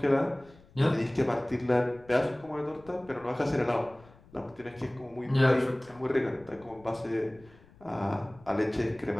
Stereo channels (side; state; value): left; noise; rumble, 25 dB below the sound